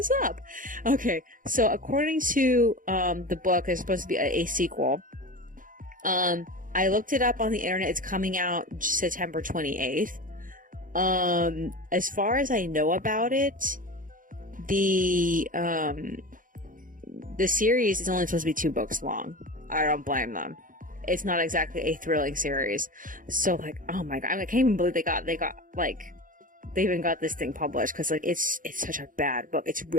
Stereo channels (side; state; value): left; late; 0.39 ms